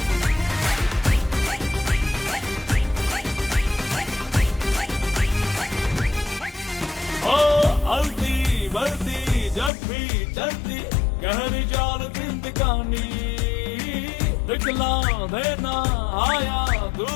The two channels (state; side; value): drops out; right; at 9.7 s